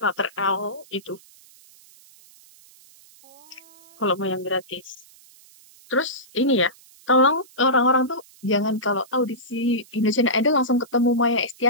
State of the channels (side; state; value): right; noise; hiss, 26 dB below the sound